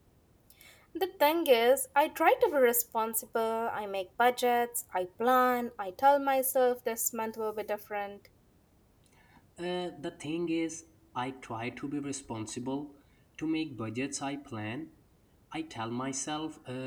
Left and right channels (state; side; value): identical; both; correlation 1.00